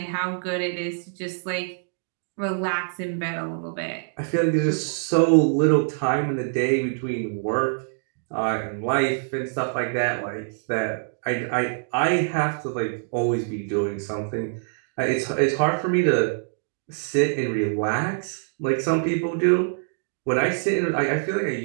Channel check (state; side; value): silent; left; digital silence